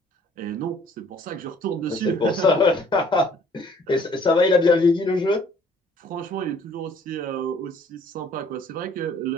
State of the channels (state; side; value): normal; both; correlation 0.57